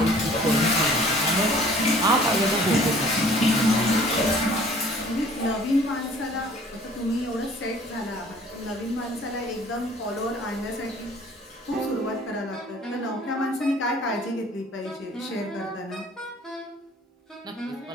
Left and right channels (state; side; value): normal; both; correlation 0.53